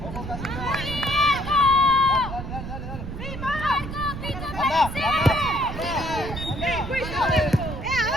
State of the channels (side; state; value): right; noise; rumble, 8 dB below the sound